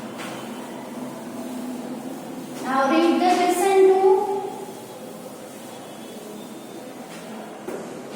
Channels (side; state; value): both; identical; correlation 1.00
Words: Now read the question 2.